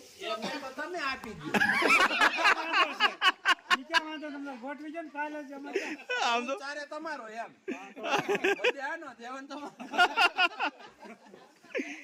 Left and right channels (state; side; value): identical; both; correlation 1.00